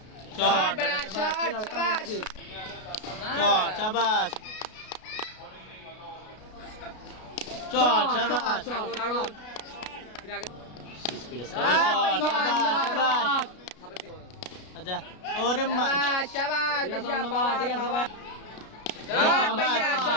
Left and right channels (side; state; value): right; late; 33 ms